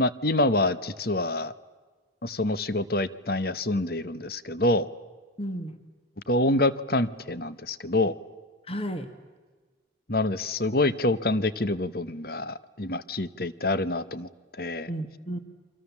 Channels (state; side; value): normal; both; correlation 0.16